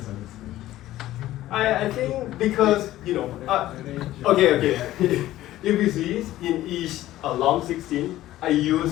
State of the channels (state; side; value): quieter; right; 14.8 dB